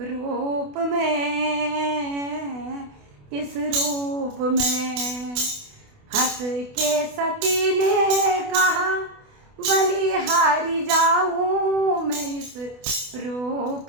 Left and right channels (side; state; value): left; late; 28 ms